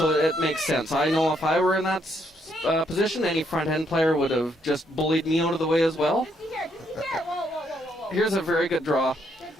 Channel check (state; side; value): normal; both; correlation 0.73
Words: it makes sense. I know if I were in that position, any front end player would have just bullied me out of the way as well. Whoa. Here's a very good draw.